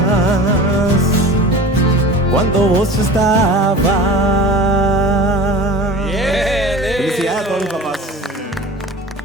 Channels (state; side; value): normal; both; correlation 0.38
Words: cuando vos estabas. Bien, Felicidades a todos los papás.